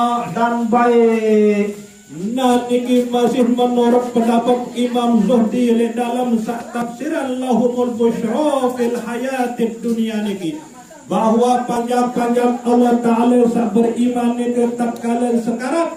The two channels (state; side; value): identical; both; correlation 1.00